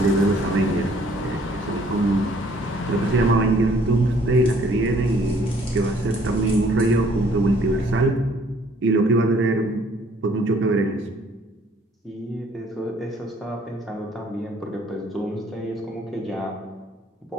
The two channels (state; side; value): normal; both; correlation 0.60